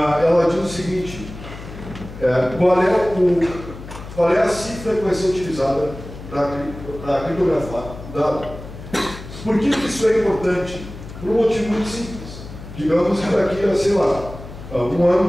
diz o seguinte: qual é a cifra que vai ser utilizada para criptografar o dado? Por que isso é importante? Por um motivo muito simples. Digamos que daqui a, sei lá, 1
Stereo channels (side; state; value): left; noise; hum, 13 dB below the sound